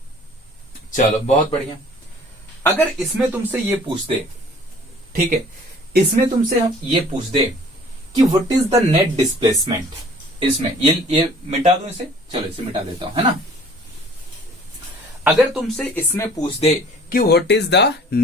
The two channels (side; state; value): both; normal; correlation 0.51